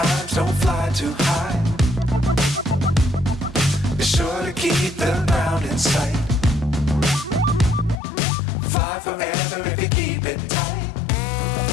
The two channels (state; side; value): drops out; right; at 8.0 s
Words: don't fly too high. Be sure to keep the ground in sight. Fly forever if you keep it tight.